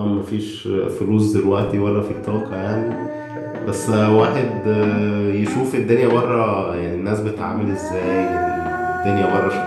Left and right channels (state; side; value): identical; both; correlation 1.00